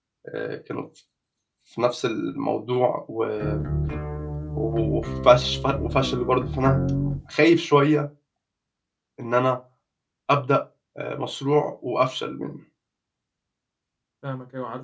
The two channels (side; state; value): both; identical; correlation 1.00